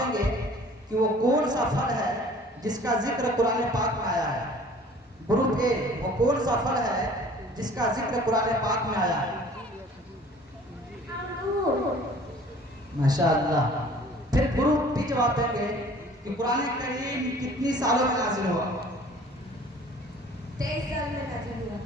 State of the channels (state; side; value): normal; both; correlation 0.50